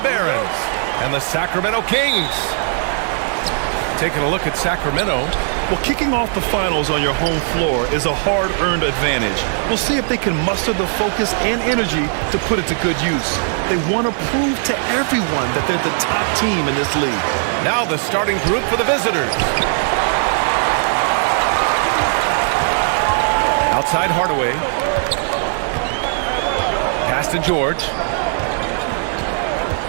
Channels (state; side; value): silent; left; 67 dB below the other